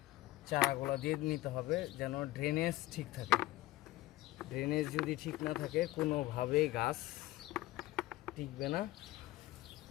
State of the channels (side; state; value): right; quieter; 17.4 dB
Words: চারাগুলা দিয়ে নিতে হবে যেন ড্রেনেজ ঠিক থাকে। ড্রেনেজ যদি ঠিক না থাকে কোনোভাবেই গাছ টিকবে না।